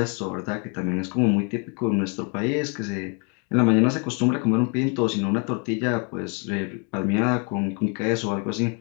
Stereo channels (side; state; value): right; quieter; 36.6 dB